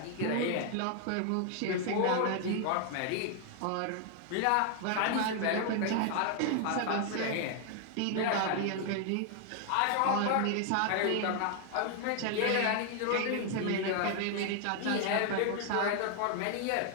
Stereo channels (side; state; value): both; different; correlation 0.00